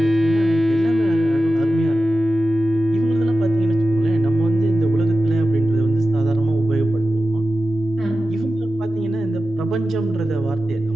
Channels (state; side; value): normal; both; correlation 0.93